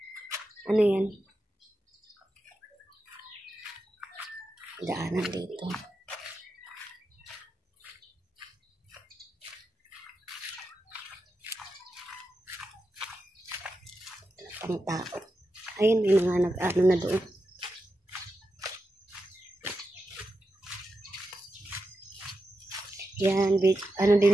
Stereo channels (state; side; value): normal; both; correlation 0.88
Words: Ano yan? Daanan dito. Pang tao. Ayun, may mga nag-ano na doon. Yan, ano